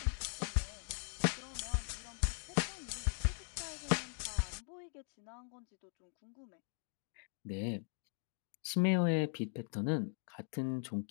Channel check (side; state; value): right; silent; 51 dB below the other